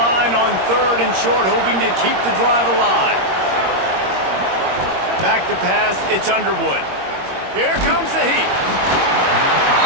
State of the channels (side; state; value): left; late; 21 ms